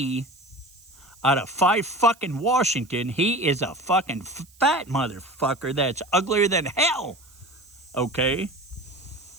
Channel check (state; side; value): noise; right; hiss, 28 dB below the sound